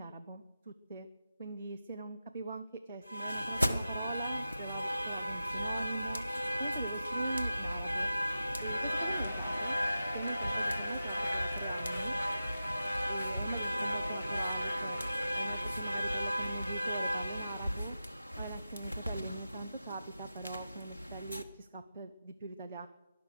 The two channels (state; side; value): inverted; both; correlation -0.92